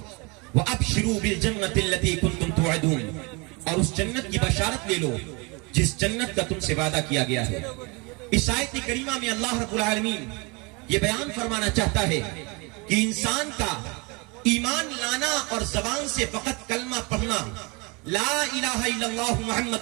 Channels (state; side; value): quieter; left; 28.7 dB